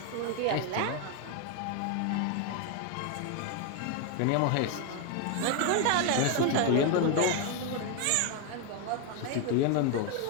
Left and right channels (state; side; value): different; both; correlation 0.01